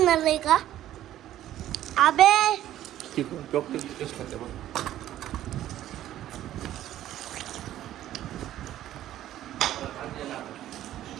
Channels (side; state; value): left; quieter; 12.8 dB